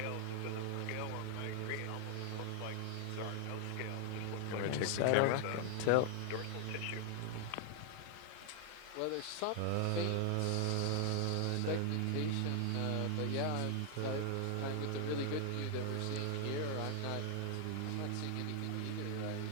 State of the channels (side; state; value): both; different; correlation 0.00